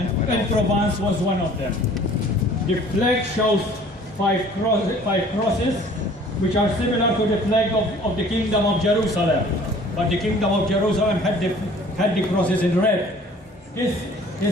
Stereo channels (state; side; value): normal; both; correlation 0.51